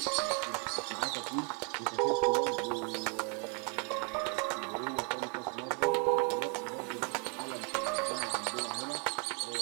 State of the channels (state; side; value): quieter; left; 38.6 dB